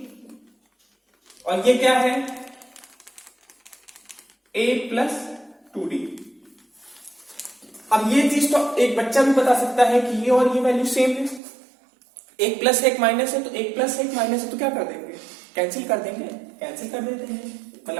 और ये क्या है, a प्लस 2d। अब ये चीज तो एक बच्चा भी बता सकता है कि ये और ये वैल्यू सेम है, एक प्लस एक माइनस है, तो एक प्लस एक माइनस है, तो क्या कर देंगे, कैंसिल कर देंगे, कैंसिल कर देते हैं,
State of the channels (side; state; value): left; drops out; at 11.4 s